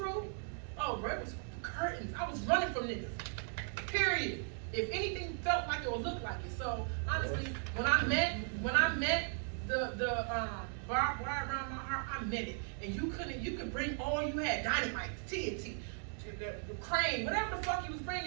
oh, bro, it was curtains. I was running from niggas. Period. If anything felt like it or looked like it. So honestly, when I met the barbed wire around my heart, I meant it. And you could bring all you had, dynamite, TNT, the crane, whatever the fuck you was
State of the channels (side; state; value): left; silent; 53 dB below the other